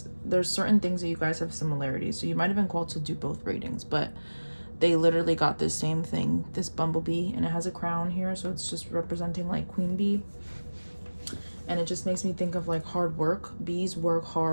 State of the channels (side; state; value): both; inverted; correlation -1.00